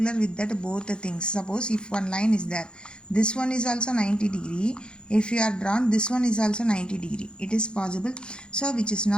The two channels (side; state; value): right; late; 0.051 ms